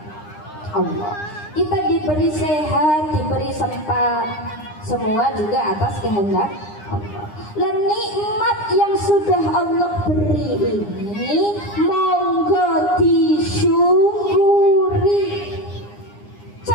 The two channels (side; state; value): right; late; 9.8 ms